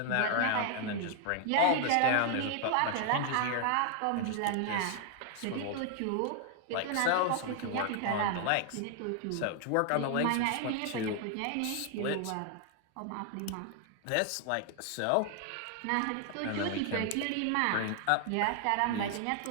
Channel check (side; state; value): both; different; correlation 0.00